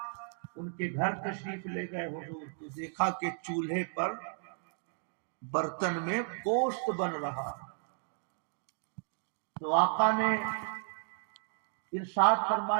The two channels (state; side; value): silent; left; 55 dB below the other